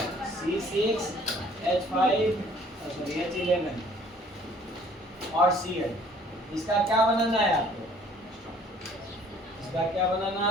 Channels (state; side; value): normal; both; correlation 0.56